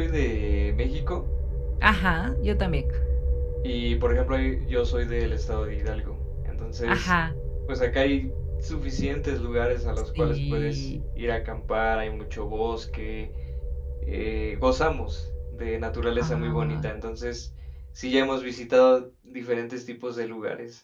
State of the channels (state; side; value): identical; both; correlation 1.00